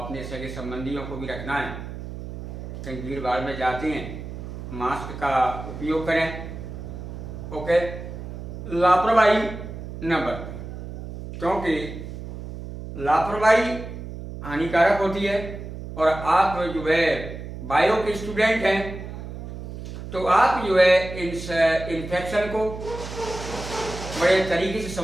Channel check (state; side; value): noise; right; hum, 9 dB below the sound